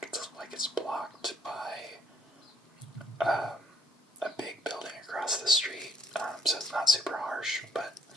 like it's blocked by a big building across the street, so it's not super harsh, but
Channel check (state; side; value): normal; both; correlation 0.65